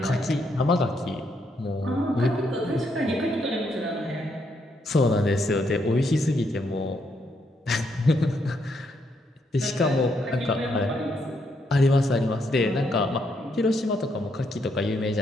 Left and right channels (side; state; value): both; normal; correlation 0.76